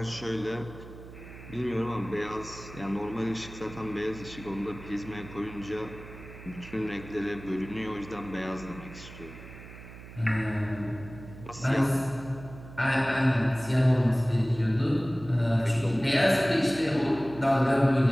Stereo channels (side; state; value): right; noise; hum, 15 dB below the sound